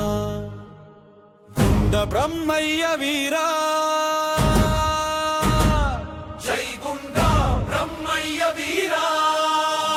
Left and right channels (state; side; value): identical; both; correlation 1.00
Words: గుండ బ్రహ్మయ్య వీరా జై గుండ బ్రహ్మయ్య వీరా